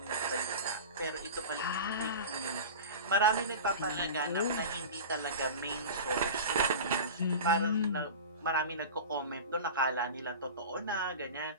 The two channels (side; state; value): both; inverted; correlation -0.31